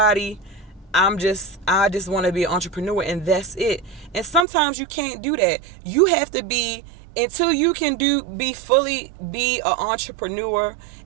I just want to be an entrepreneur, and that's it. And sometimes you can't do that. You have to be, until you can be fully be an entrepreneur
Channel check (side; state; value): left; drops out; at 4.5 s